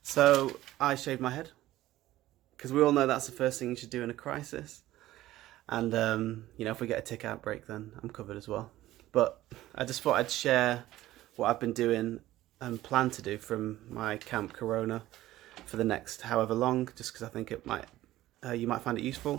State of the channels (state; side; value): quieter; left; 15.4 dB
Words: So I shaved my head because we all know that's the first thing you should do in a crisis. And if we get a tick outbreak, then I'm covered as well. But I just thought I'd share what I've been doing and plan to do from my Camp Corona for the next however long, just because I think it might you might find it